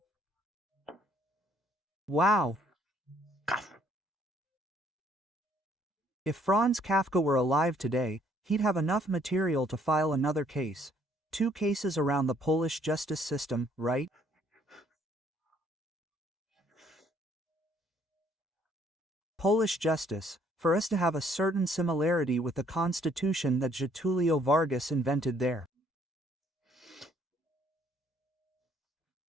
Wow! If Franz Kafka were alive today, he'd have enough material to file another case. 2 cases around the Polish justice system, right? Polish justice, for us to have a certain similarity with the constitution that Getulio Vargas invented there.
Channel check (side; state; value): both; normal; correlation 0.64